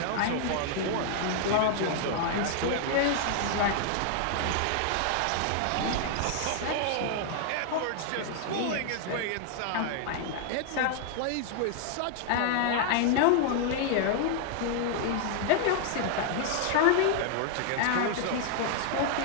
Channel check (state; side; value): different; both; correlation 0.00